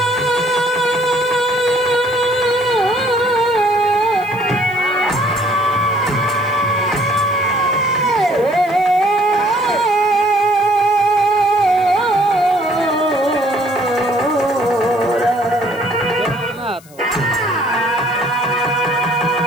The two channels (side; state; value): left; noise; hiss, 25 dB below the sound